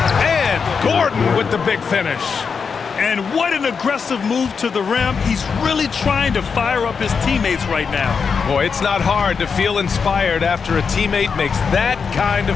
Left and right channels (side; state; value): right; quieter; 5.8 dB